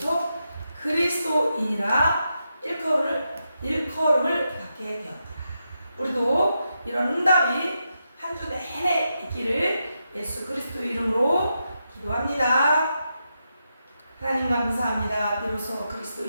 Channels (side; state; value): both; inverted; correlation -0.86